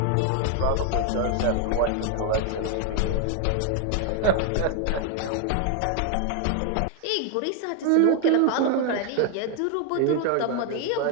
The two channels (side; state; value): both; different; correlation 0.00